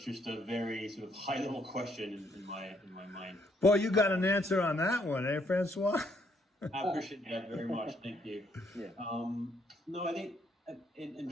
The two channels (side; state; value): both; normal; correlation 0.70